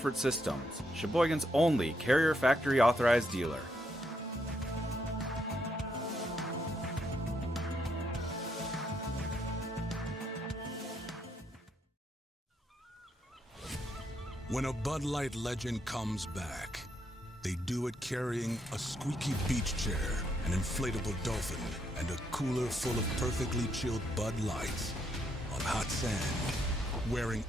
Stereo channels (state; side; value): normal; both; correlation 0.76